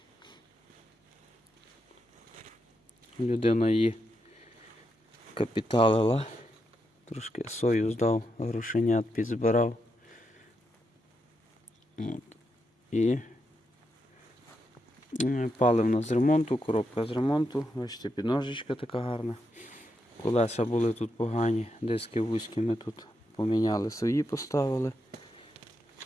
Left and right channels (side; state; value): both; normal; correlation 0.83